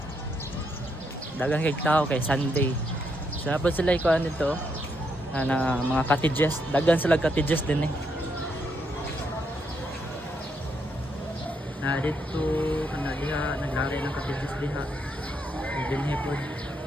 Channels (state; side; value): normal; both; correlation 0.77